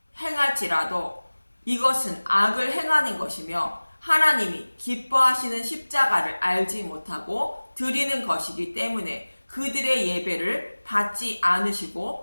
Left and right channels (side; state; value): both; inverted; correlation -1.00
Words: 행할지라도 이것은 악을 행하는 것이며 하나님이 기뻐하시는 십자가를 알지 못하고 드리는 것이기 때문에 그들의 예배를 받지